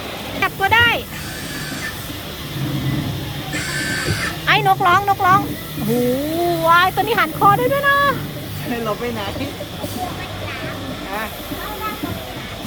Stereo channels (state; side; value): identical; both; correlation 1.00